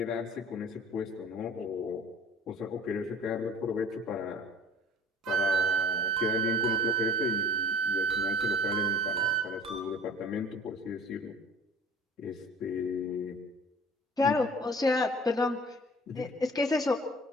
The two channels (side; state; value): both; normal; correlation 0.46